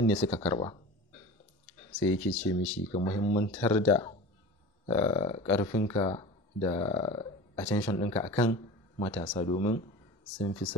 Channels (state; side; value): normal; both; correlation 0.34